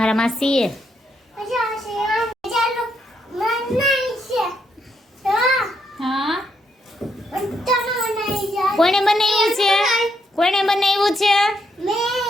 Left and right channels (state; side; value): normal; both; correlation 0.77